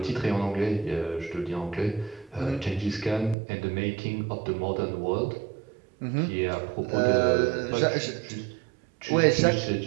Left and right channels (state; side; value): drops out; left; at 3.4 s